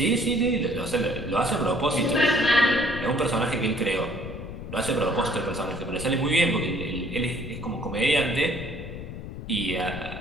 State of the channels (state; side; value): noise; left; rumble, 9 dB below the sound